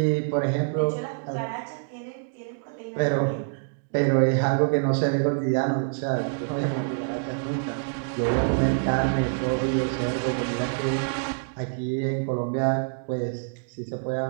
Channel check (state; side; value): silent; left; digital silence